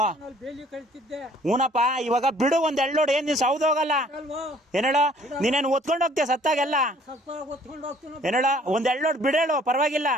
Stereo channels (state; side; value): normal; both; correlation 0.57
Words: ಹೂನಪ್ಪ ಇವಾಗ ಬಿಡು ಒಂದ್ ಎಳ್ಳೋಡು ಏನ್ ನೀನ್ ಸೌದ್ ಹೋಗಲ್ಲ ಏನೇಳ ನೀನೇನು ಒತ್ಕೊಂಡ್ ಹೋಗ್ತೀಯ ಸತ್ತಾಗೆಲ್ಲ ಏನೇಳ ಒಂದ್ ಎಳ್ಳೋಡು ಬಿಡೇಳು ಪರವಾಗಿಲ್ಲ